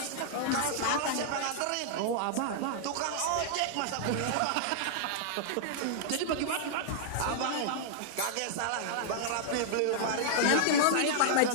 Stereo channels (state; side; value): different; both; correlation -0.01